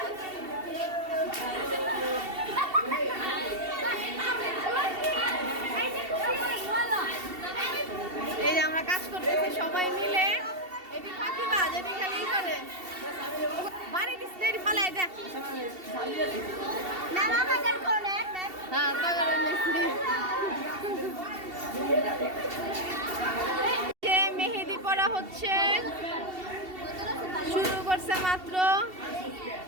এই যে আমরা কাজ করতেছি সবাই মিলে। এটি ফাঁকিবাজ, এটি খালি করে বাড়ি দিচ্ছে ফালাই দেখ। হ্যাঁ মেহেদি পড়া হচ্ছে, শুরু করছে মাত্র।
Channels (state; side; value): late; left; 2.7 ms